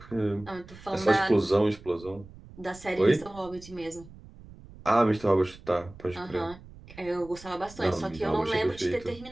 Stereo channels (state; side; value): noise; right; rumble, 20 dB below the sound